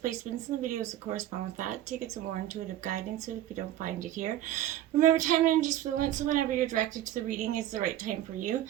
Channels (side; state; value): left; quieter; 12.8 dB